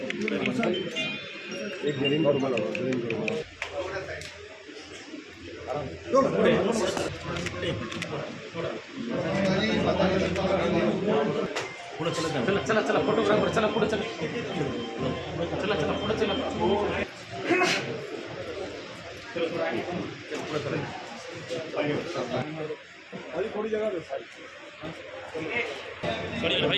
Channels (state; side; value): identical; both; correlation 1.00